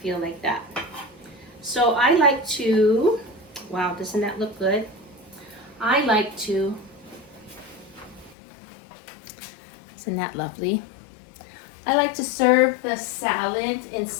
like that. So I like to, wow, doesn't that look good? I like to, isn't that lovely? I like to serve the salad in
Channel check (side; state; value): right; drops out; at 8.3 s